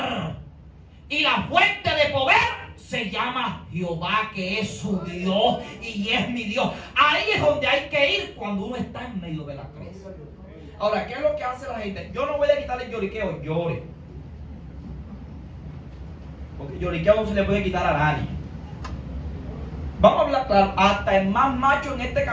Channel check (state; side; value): identical; both; correlation 1.00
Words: Y la fuente de poder se llama Jehová, que es su Dios y es mi Dios. Ahí es donde hay que ir cuando uno está en medio de la crisis. Ahora, ¿qué es lo que hace la gente? Yo no voy a quitarle el lloriqueo, llore. Porque el lloriqueo no se le puede quitar a nadie. Vamos a hablar claro, hasta el más macho en este